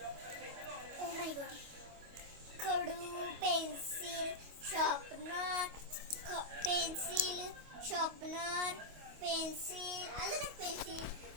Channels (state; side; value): late; left; 25 ms